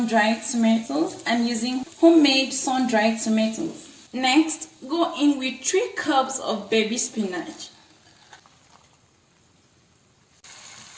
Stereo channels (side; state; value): both; identical; correlation 1.00